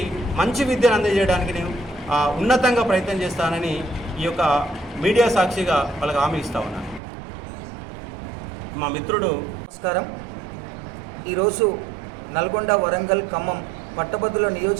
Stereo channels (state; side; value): drops out; left; at 7.0 s